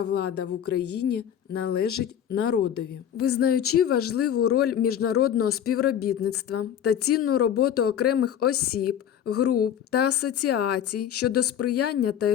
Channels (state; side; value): quieter; right; 9.5 dB